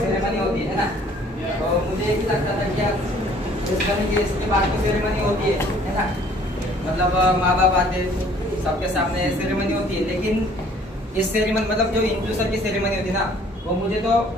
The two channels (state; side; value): normal; both; correlation 0.57